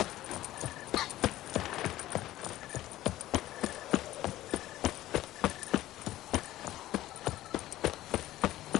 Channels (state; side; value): quieter; right; 15.0 dB